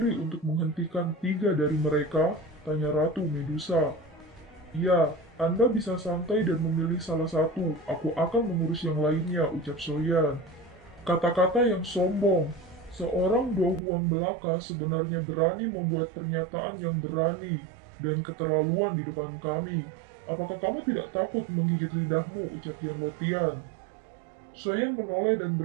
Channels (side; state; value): left; drops out; at 13.8 s